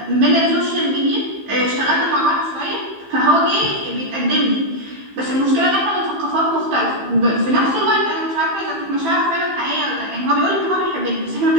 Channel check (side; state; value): left; late; 15 ms